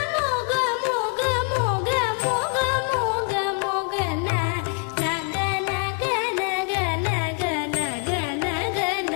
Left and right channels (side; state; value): right; quieter; 36.1 dB